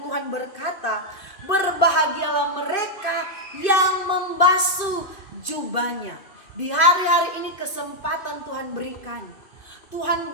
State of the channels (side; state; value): right; late; 2.5 ms